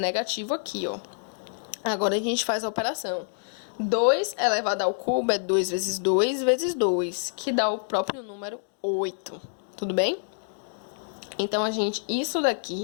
aqui, ó. Agora, a gente faz a operação. 2 elevado ao cubo é 2 vezes 2 vezes 2, que dá o próprio número 8. Tudo bem? Então, isso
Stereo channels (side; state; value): right; silent; digital silence